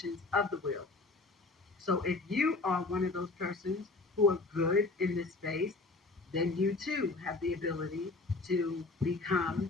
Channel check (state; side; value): quieter; right; 3.6 dB